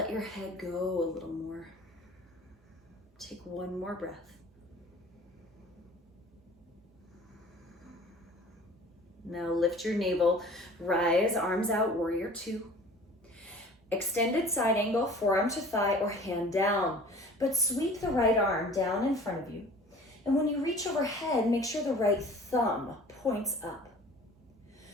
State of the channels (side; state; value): both; normal; correlation 0.46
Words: your head go a little more. Take 1 more breath. Now lift your navel, rise, arms out, warrior 2. Extended side angle, forearm to thigh or hand down, but sweep the right arm down in front of you. And when you reach overhead, make sure the right thumb points up.